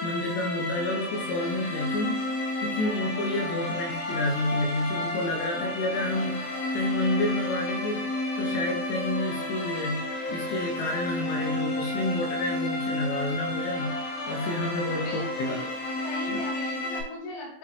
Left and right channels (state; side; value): late; right; 23 ms